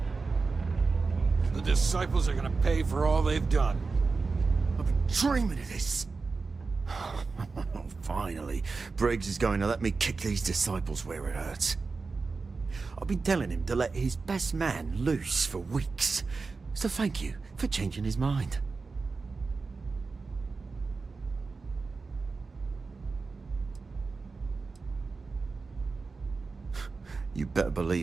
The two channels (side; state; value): left; quieter; 4.3 dB